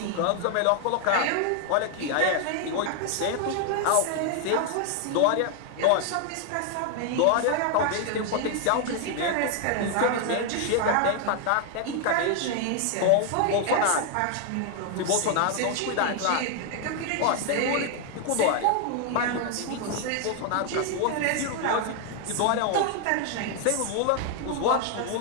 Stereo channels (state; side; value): different; both; correlation 0.00